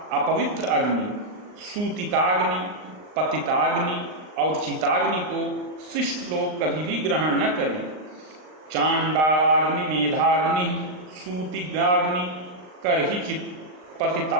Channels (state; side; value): late; left; 39 ms